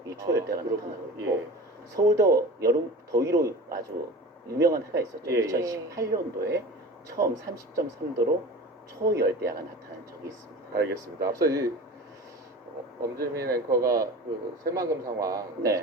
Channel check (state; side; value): normal; both; correlation 0.35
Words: 이 초열대야가 나타나고 있고 예. 서울도 여름 더위로 아주 유명한 해가 있었죠. 예, 예. 2018년도에 처음 30.3도로 초열대야가 나타난 적이 있습니다. 알겠습니다. 앞서 이 엄지민 앵커가 그 새만금 상황 네.